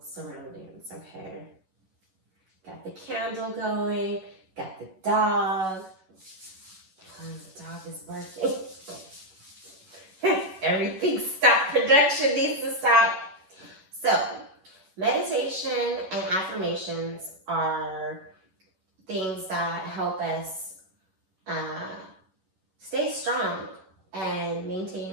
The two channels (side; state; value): left; late; 11 ms